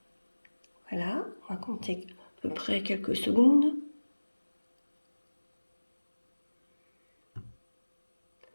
Voilà, on va compter à peu près quelques secondes.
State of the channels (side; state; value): both; inverted; correlation -1.00